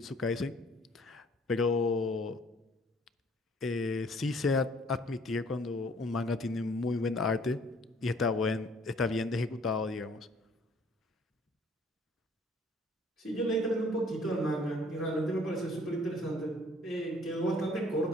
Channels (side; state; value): both; normal; correlation 0.58